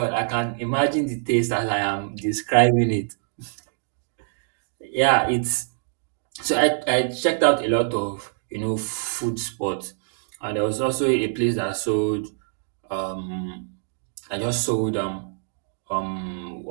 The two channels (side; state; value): left; silent; digital silence